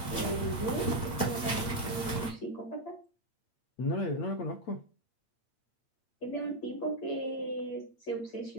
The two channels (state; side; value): late; right; 8.7 ms